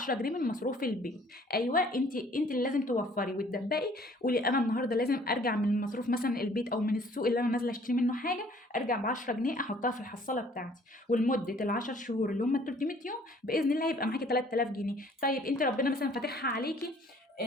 جنيه من مصروف البيت. ايوه انت اللي لازم توفري وتدبقي. قولي انا النهارده لازم ارجع من مصروف مثلا البيت او من السوق اللي انا نازله اشتري منه حاجه، ارجع ب 10 جنيه احطها في الحصاله بتاعتي. ولمده ال10 شهور اللي هم 300 يوم باذن الله هيبقى معاكي 3000 جنيه. طيب انت ربنا مثلا فاتحها عليكي،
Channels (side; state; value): both; normal; correlation 0.57